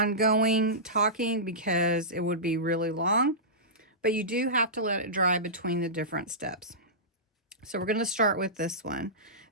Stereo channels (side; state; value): both; normal; correlation -0.18